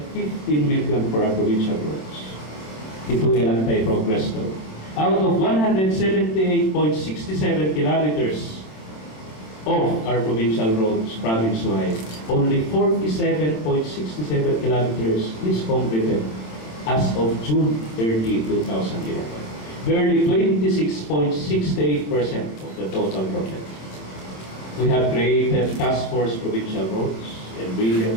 15 million for our provincial roads. Ito ilang tayo progress to. Out of 178.67 kilometers of our provincial roads, province-wide, only 47.67 kilometers is completed as of June 30, 2011. Barely 26.68% of the total project. We have created task force provincial roads and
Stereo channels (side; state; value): right; late; 27 ms